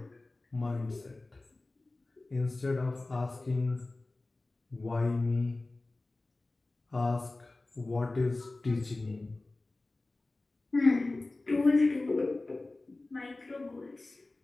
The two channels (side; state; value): right; quieter; 3.1 dB